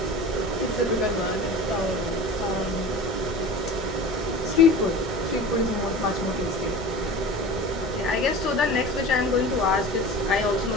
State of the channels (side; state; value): both; normal; correlation 0.36